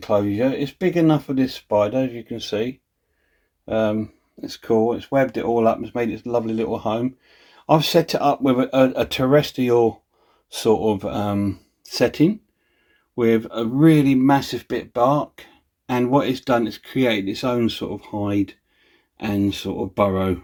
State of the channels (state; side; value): identical; both; correlation 1.00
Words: It's big enough for this spider, as you can see. It's cool. It's webbed it all up. It's made its lovely little home. I've set it up with a terrestrial sort of setting with a really massive bit of bark, and what it's done is create its own sort of hide and sort of burrow,